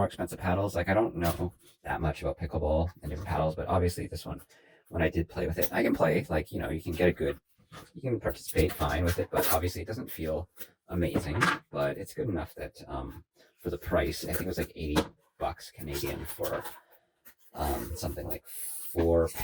expensive paddles. Like I don't know that much about pickleball and different paddles, but obviously this one, when I did play with it, I can play. Like you can get a good, you can participate fine with it, but obviously it doesn't feel amazing. But it's good enough that for the price, I think it was like 80 bucks Canadian for something like 4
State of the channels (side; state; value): both; identical; correlation 1.00